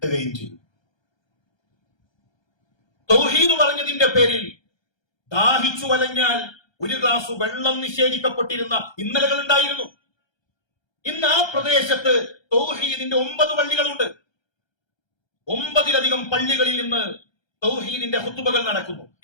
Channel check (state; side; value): late; right; 1.3 ms